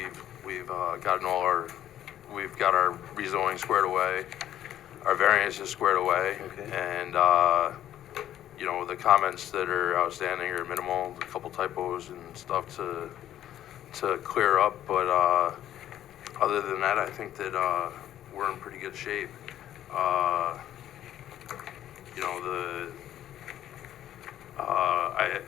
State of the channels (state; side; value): quieter; right; 11.9 dB